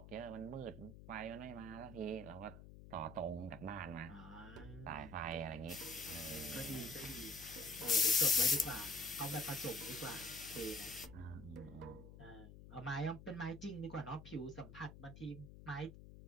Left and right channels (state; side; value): noise; left; hum, 15 dB below the sound